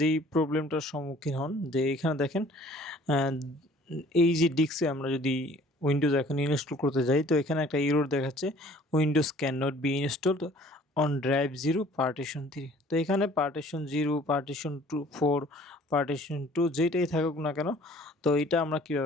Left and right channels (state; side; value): normal; both; correlation 0.53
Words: যেই প্রবলেমটার সম্মুখীন হন যে এখানে দেখেন এই যে ডিস্কে আমরা যদি উইন্ডোজ এখন ইনস্টল করতে যাই, তো এখানে একটা এরর দেখাচ্ছে windows can not be installed on drive 0 partition 3। তো এখানে পার্টিশন 0, পার্টিশন 4, পার্টিশন 2 যেটাই থাকুক না কেন, তো এটা আমরা